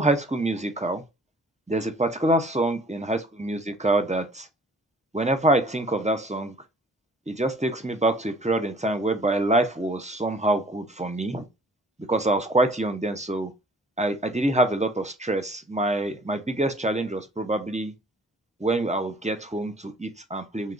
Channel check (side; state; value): both; normal; correlation 0.53